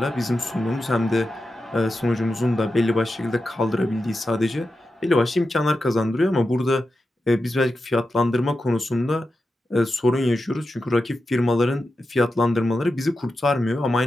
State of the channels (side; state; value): both; normal; correlation 0.90